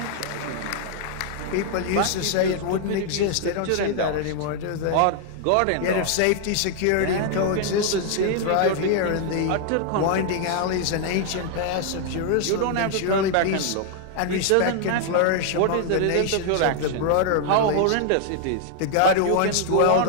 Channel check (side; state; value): both; different; correlation 0.00